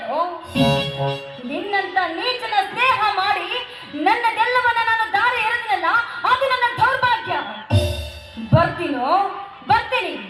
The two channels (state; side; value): identical; both; correlation 1.00